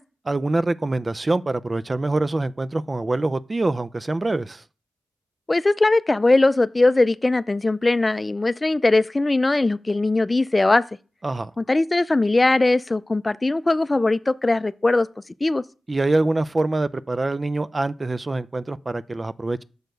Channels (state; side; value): normal; both; correlation 0.97